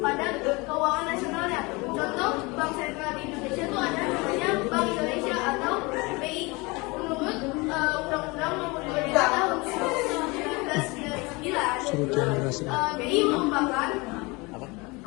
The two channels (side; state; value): right; quieter; 25.7 dB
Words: keuangan nasionalnya. Contoh Bank Sentral di Indonesia itu ada namanya Bank Indonesia atau BI. Menurut Undang-Undang Nomor 23 Tahun 1999, BI merupakan